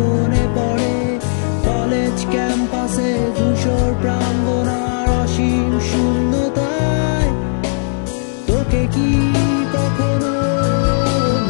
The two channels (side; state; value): right; silent; 67 dB below the other